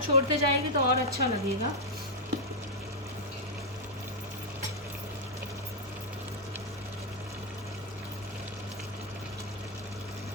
छोड़ते जाएगी तो और अच्छा लगेगा।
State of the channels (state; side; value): normal; both; correlation -0.04